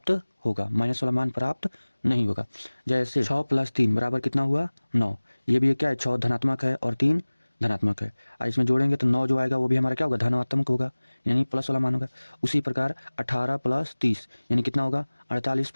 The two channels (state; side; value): inverted; both; correlation -1.00